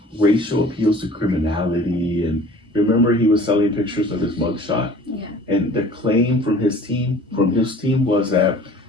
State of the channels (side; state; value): both; normal; correlation 0.46